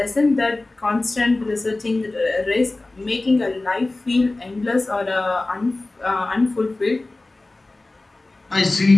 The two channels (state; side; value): quieter; right; 3.0 dB